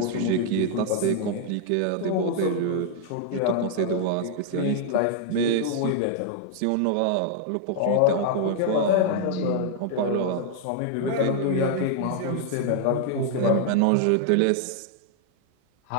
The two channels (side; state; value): both; different; correlation -0.01